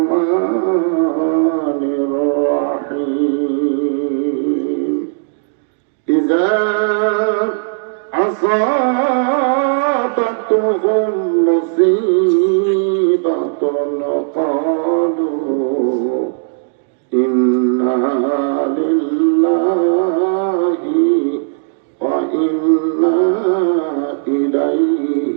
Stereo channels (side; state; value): left; silent; digital silence